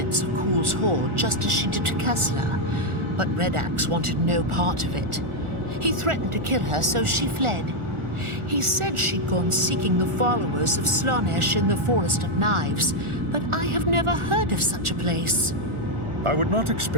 of Kuhl's horde just as she did to Kessler, but Redax wanted no part of it. He threatened to kill her, so she fled. He said she'd gone seeking the followers of Slaanesh in the Forest of Knives, but I have never heard of such a place. I would not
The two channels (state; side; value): late; left; 1.4 ms